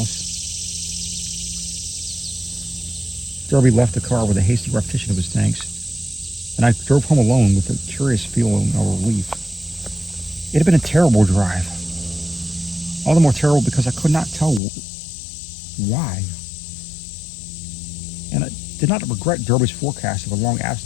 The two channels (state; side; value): drops out; right; at 14.6 s